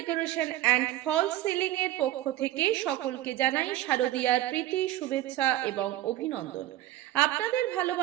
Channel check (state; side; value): quieter; left; 14.6 dB